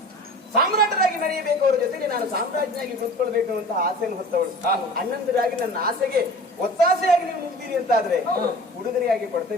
ಸಾಮ್ರಾಟರಾಗಿ ಮೆರೆಯಬೇಕು. ಅವರ ಜೊತೆಗೆ ನಾನು ಸಾಮ್ರಾಜ್ಞಿಯಾಗಿ ಕೂತ್ಕೊಳ್ಬೇಕು ಅಂತ ಆಸೆಯನ್ನು ಹೊತ್ತವಳು. ಅಣ್ಣಂದಿರಾಗಿ ನನ್ನ ಆಸೆಗೆ ಒತ್ತಾಸೆಯಾಗಿ ನೀವು ನಿಲ್ತೀರಿ ಅಂತ ಆದ್ರೆ ಉಡುಗೊರೆಯಾಗಿ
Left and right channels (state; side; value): normal; both; correlation 0.41